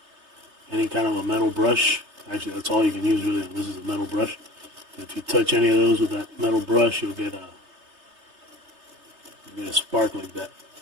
any kind of a metal brush, actually that's all you can use really. This is a metal brush. If you touch any of those with that metal brush, you'll get a spark like that.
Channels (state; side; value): late; left; 3.3 ms